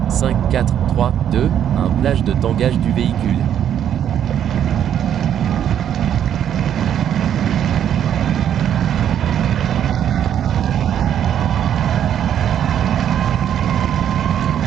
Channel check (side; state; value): left; quieter; 9.7 dB